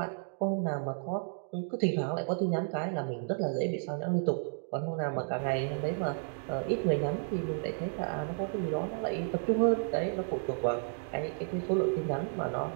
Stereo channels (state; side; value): silent; left; 56 dB below the other